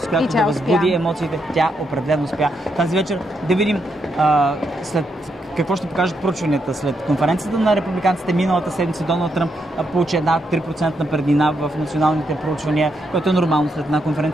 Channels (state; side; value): normal; both; correlation 0.80